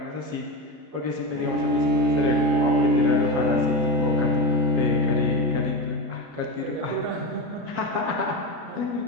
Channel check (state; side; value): late; left; 27 ms